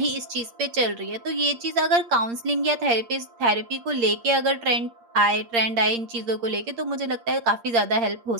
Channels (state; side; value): late; left; 8.6 ms